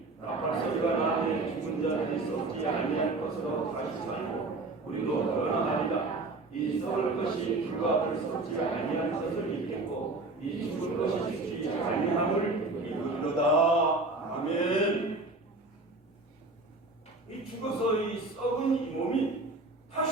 우리도 변화하리라. 이 썩을 것이 불과 불썩지 아니한 것을 믿겠고 이 죽을 것이 죽지 아니함을 믿으리로다. 아멘. 이 죽어서 이 썩은 이 몸이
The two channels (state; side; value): quieter; left; 3.2 dB